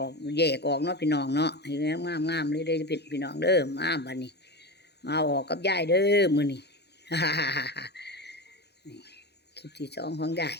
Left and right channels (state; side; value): late; right; 0.48 ms